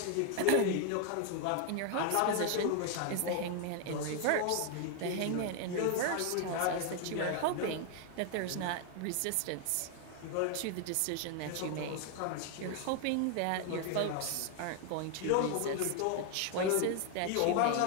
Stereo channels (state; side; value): different; both; correlation 0.00